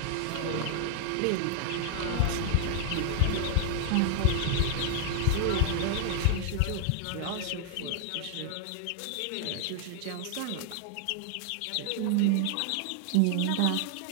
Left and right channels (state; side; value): different; both; correlation 0.00